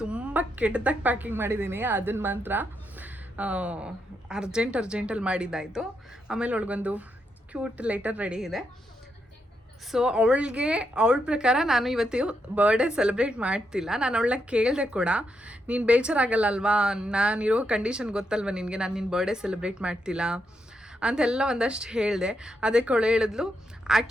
ತುಂಬ ಕೆಟ್ಟದಾಗಿ ಪ್ಯಾಕಿಂಗ್ ಮಾಡಿದ್ದೀನಿ. ಅದನ್ನು ಮಾತ್ರ ಅರ್ಜೆಂಟಲ್ಲಿ ಮಾಡಿದ್ದಾಯಿತು. ಆಮೇಲೆ ಅವಳಿಗೊಂದು ಕ್ಯೂಟ್ ಲೆಟರ್ ರೆಡಿ ಇದೆ. ಸೊ ಅವಳ ಪ್ರಕಾರ ನಾನು ಇವತ್ತು ಬರ್ಡೇ ಸೆಲೆಬ್ರೇಟ್ ಮಾಡ್ತಿಲ್ಲ. ನಾನು ಅವಳನ್ನ ಕೇಳಿದೆ ಕೂಡ, ನೀನು ಬೇಜಾರಾಗಲ್ಲ ಅಲ್ವಾ, ನಾನಿರೋ ಕಂಡೀಷನ್ ಗೊತ್ತಲ್ವ ನಿನಗೆ, ನಾನು ನಿನ್ನ ಬರ್ಡೇ ಸೆಲೆಬ್ರೇಟ್ ಮಾಡ್ತಿಲ್ಲ ಅಂತೆಲ್ಲ ಒಂದಷ್ಟು ಹೇಳಿದೆ. ಅದಕ್ಕೆ ಅವಳು ಹೇಳಿದ್ಲು,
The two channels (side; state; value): both; normal; correlation 0.82